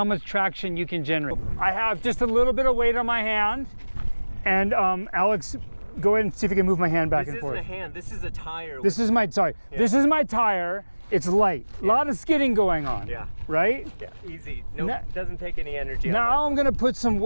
much traction you can generate. I have just a little bit of weight on my hand, and Alex, go ahead and see if you can move my hand back and forth. This isn't a hand, this is a tire. This is my tire. It's light. A lot of skidding going on. Yeah. Right? Yeah, easy. No, doesn't take any energy. Now I'm gonna put some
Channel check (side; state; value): both; inverted; correlation -1.00